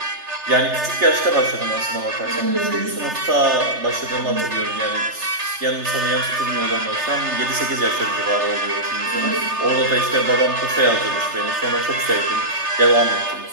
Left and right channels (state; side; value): late; left; 3.3 ms